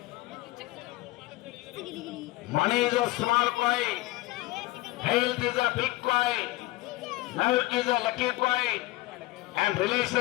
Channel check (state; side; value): quieter; right; 19.3 dB